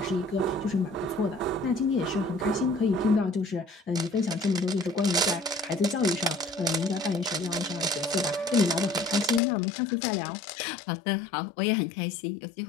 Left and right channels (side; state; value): right; drops out; at 9.4 s